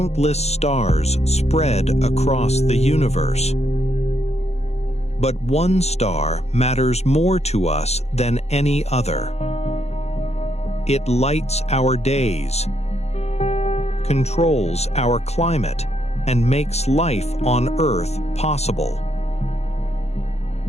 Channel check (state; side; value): late; right; 0.31 ms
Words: stars spread across the universe. But one star matters more to us than any other. It lights our days, controls our climate, and makes life on Earth possible.